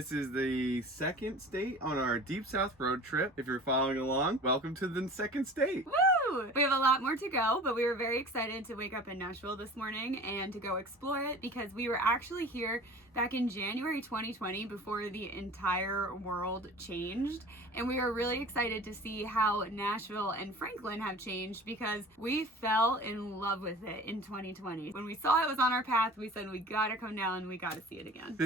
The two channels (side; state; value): both; normal; correlation 0.41